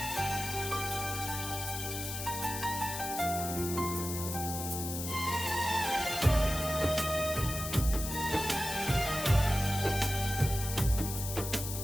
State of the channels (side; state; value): left; noise; hiss, 6 dB below the sound